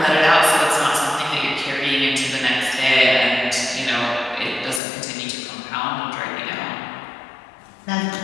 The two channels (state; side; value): drops out; right; at 4.8 s